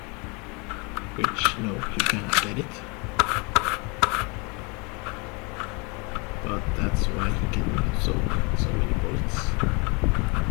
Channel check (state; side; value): quieter; right; 30.7 dB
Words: which no, you cannot get it, but that's why he can so many bullets.